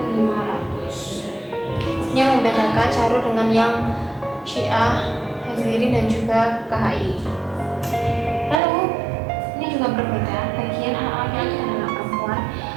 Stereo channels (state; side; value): drops out; left; at 8.6 s